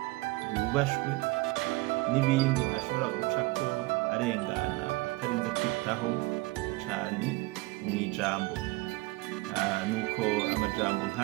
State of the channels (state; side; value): quieter; left; 22.3 dB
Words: yubashwe n'ibindi ashobora gucako arengana atarinze kwitaho cane mw'ijambo. Nuko amajambo